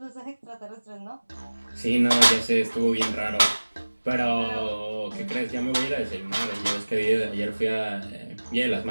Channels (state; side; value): inverted; both; correlation -1.00